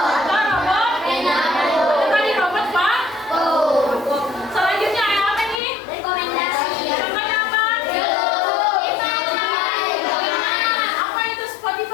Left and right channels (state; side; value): drops out; right; at 5.6 s